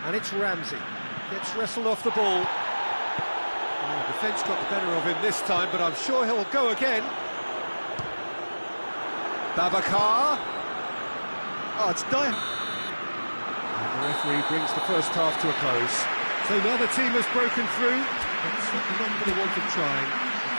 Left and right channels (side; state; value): both; inverted; correlation -1.00